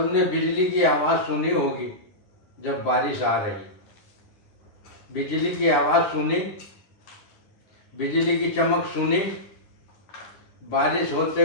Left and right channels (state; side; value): late; right; 10 ms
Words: बिजली की आवाज़ सुनी होगी। जब बारिश आ रही, बिजली की आवाज़ सुनी, बिजली की चमक सुनी, बारिश होते